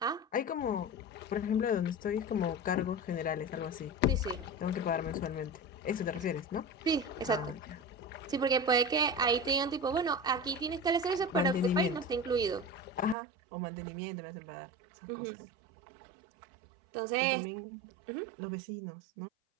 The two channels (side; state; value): left; drops out; at 13.2 s